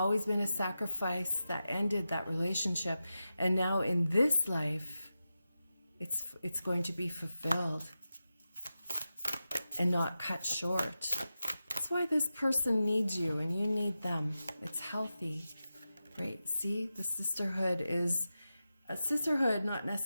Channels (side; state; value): both; inverted; correlation -0.92